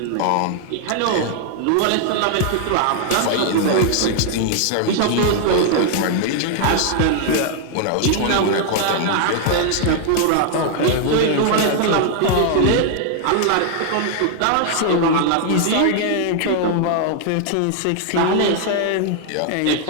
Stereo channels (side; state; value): both; different; correlation 0.00